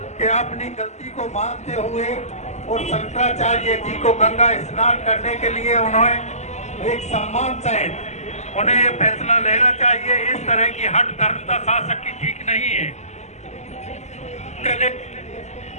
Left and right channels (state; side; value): late; right; 0.33 ms